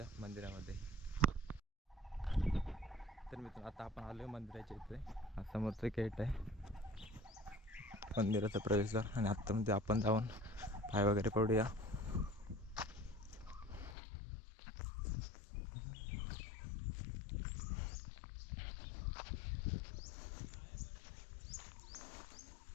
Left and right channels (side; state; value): right; drops out; at 14.0 s